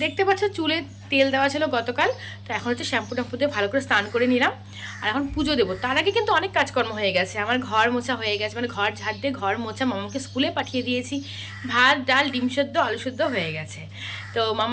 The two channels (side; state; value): both; identical; correlation 1.00